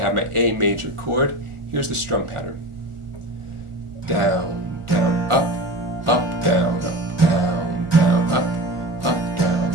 my A major chord. Here's the strum pattern. Down, down, up, up, down, up, down, down, up,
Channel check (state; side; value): late; left; 1.4 ms